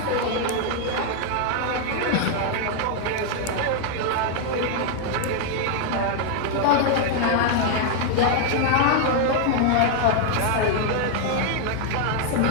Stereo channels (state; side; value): different; both; correlation 0.00